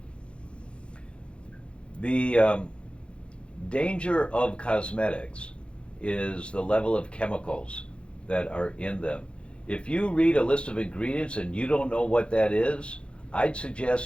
The danger of cosmetics is the level of chemicals that are in them. If you read a list of ingredients and you don't know what that is, I'd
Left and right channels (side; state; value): right; late; 0.058 ms